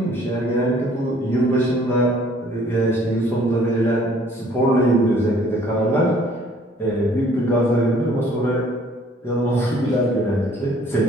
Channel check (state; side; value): normal; both; correlation 0.57